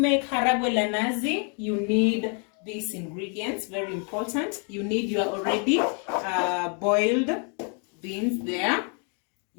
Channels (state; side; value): quieter; right; 39.2 dB